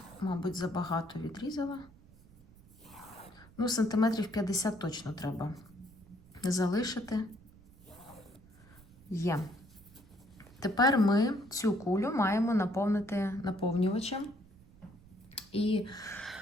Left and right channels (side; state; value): right; noise; rumble, 24 dB below the sound